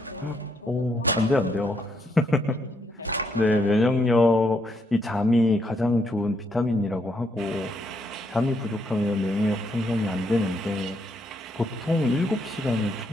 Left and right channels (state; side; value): normal; both; correlation 0.75